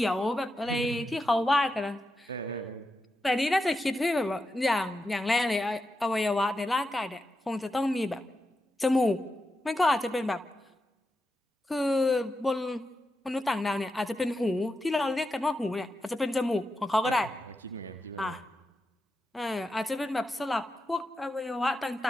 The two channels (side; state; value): both; normal; correlation 0.88